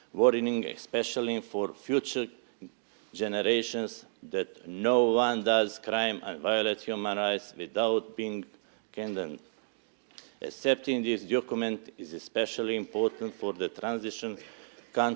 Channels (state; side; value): silent; left; digital silence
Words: warning, especially for future generations, that no one does crime and violate human rights without being condemned. Accepting this document is especially important for the transition